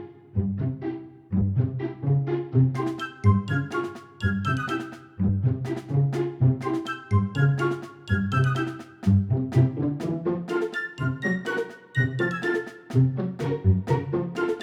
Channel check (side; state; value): both; identical; correlation 1.00